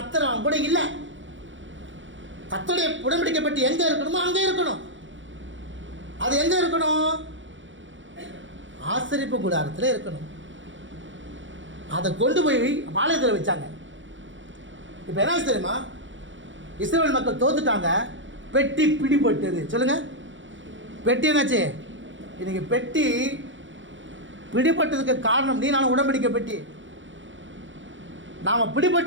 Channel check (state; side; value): late; left; 0.55 ms